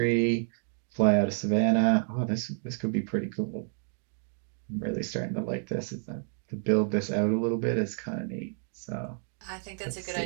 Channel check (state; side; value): silent; left; 58 dB below the other